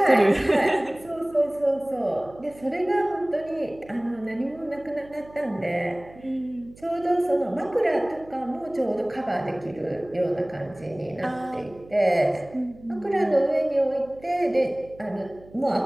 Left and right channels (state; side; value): noise; right; hum, 22 dB below the sound